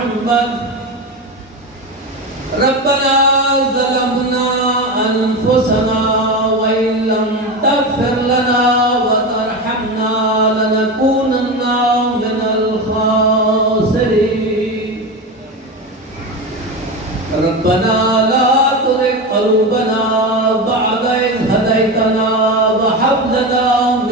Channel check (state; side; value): normal; both; correlation 0.21